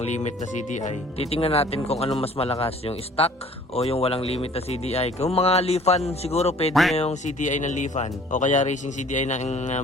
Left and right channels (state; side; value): normal; both; correlation 0.52